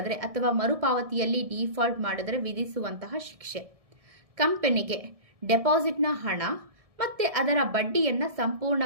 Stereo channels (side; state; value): left; late; 1.7 ms